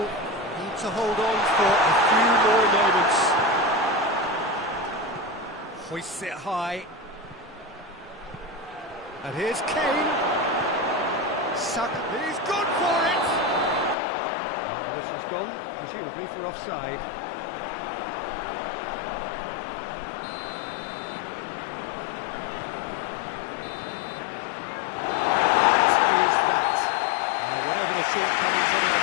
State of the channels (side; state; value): right; drops out; at 14.0 s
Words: to hold on for a few more moments. Hoists it high. And here's Kane. He's gone for it! And the whistle's gone, presumably for offside. Whatever the shortcomings on